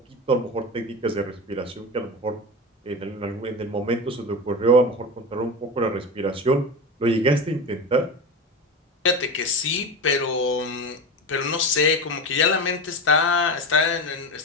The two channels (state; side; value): normal; both; correlation 0.23